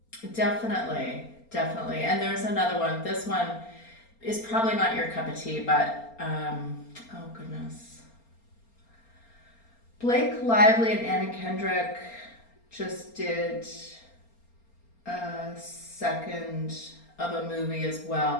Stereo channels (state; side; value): late; right; 4.3 ms